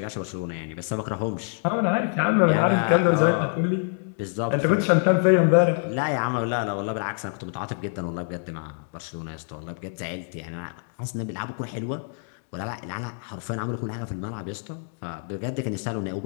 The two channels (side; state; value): right; silent; 56 dB below the other